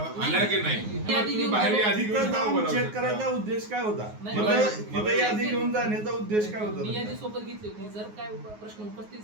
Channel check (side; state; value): left; late; 9.5 ms